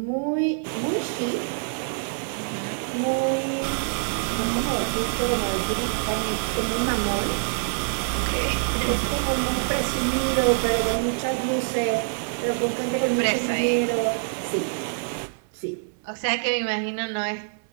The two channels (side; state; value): left; silent; 61 dB below the other